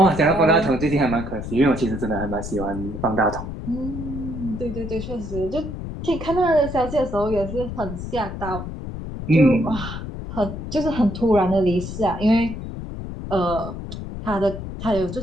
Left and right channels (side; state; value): left; noise; rumble, 8 dB below the sound